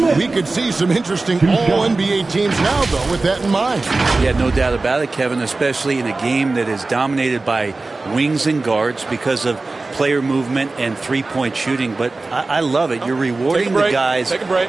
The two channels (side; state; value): left; quieter; 3.4 dB